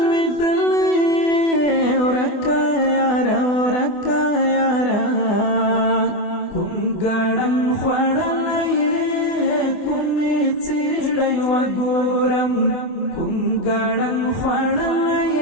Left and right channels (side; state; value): right; late; 24 ms